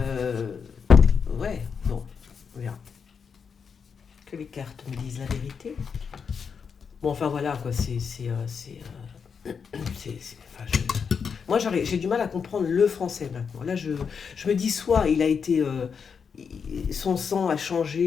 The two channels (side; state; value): right; quieter; 6.2 dB